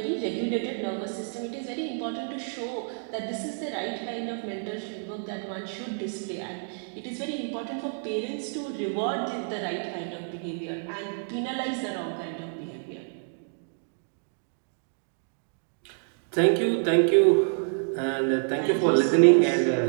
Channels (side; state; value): left; silent; digital silence